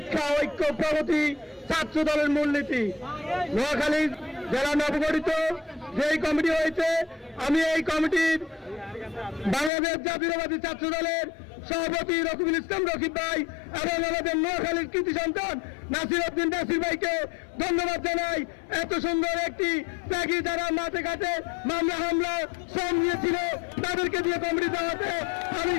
ঐক্য প্রগতি ছাত্র দলের মূলনীতি। নোয়াখালী জেলা নবগঠিত যেই কমিটি হয়েছে, আমি এই কমিটির বাংলাদেশ জাতীয়তাবাদী ছাত্র দলের সভাপতি রকিবুল ইসলাম রকিব ভাই এবং আমাদের নোয়াখালীর কৃতি সন্তান নাসির উদ্দিন নাসির ভাইকে ধন্যবাদ জানাই। এত সুন্দর একটি ত্যাগী যারা মাঠে ঘাটে মামলা হামলা শ্রম নিয়েছিল তাদেরকে দিয়ে কমিটি দেওয়াতে আমি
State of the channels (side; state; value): right; drops out; at 9.7 s